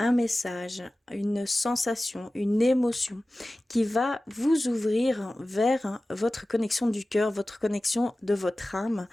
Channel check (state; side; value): normal; both; correlation 0.96